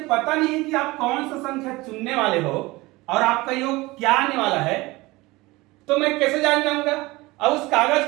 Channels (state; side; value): quieter; left; 21.2 dB